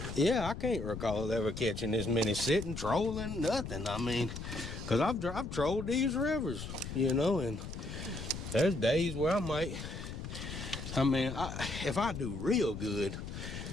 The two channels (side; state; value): left; noise; rumble, 8 dB below the sound